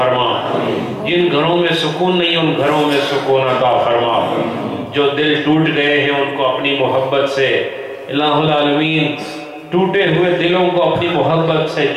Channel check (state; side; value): identical; both; correlation 1.00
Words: جن گھروں میں سکون نہیں ان گھروں میں سکون عطا فرما، جو دل ٹوٹ گئے ہیں ان کو اپنی محبت سے الہ العالمین ٹوٹے ہوئے دلوں کو اپنی محبت سے